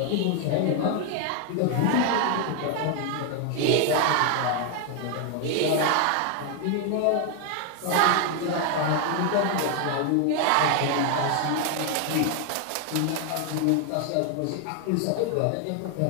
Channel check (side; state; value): both; different; correlation 0.00